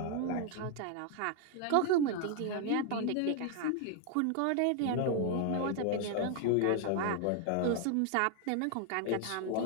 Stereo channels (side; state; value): both; different; correlation 0.00